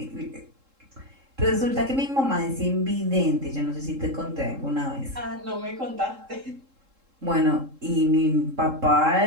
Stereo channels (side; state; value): left; late; 3.7 ms